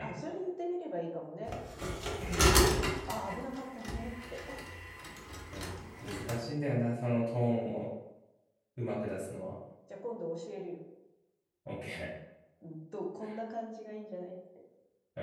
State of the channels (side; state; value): both; identical; correlation 1.00